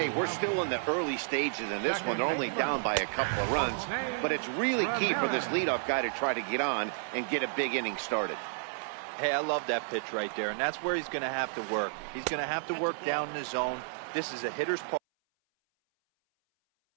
we're still in the early stages in this one. They're only down by a couple of runs, but it's really key for this leadoff guy to try to get on and get a big inning started. Hey, I love that pitch right there, and that's where he's going to have to work. He's going to have to work down in the zone. This is a hitter's park.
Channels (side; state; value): left; silent; 57 dB below the other